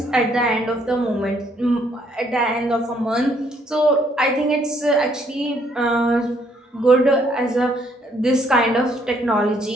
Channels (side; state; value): both; normal; correlation 0.68